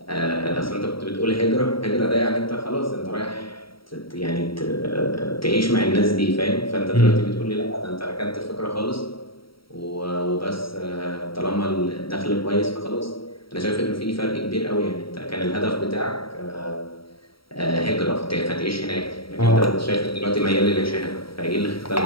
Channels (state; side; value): late; right; 0.75 ms